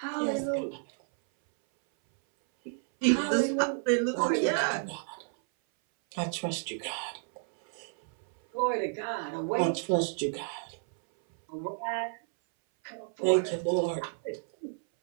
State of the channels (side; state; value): left; silent; 57 dB below the other